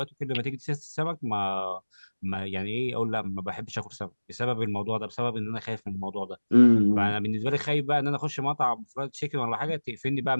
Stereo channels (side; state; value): both; inverted; correlation -1.00